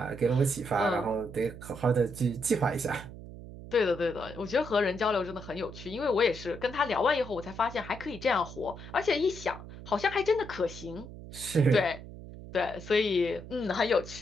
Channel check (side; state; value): right; noise; hum, 14 dB below the sound